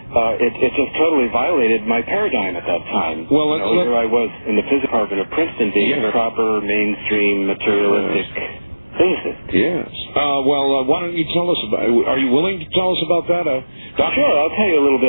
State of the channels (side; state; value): both; inverted; correlation -1.00